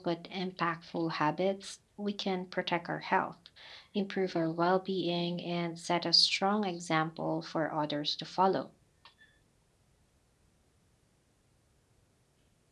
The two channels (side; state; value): both; identical; correlation 1.00